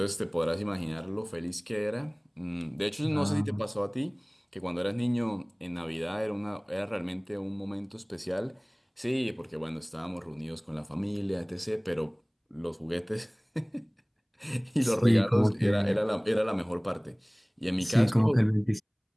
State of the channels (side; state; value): both; identical; correlation 1.00